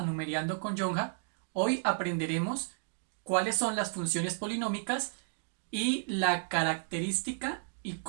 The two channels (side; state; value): left; silent; digital silence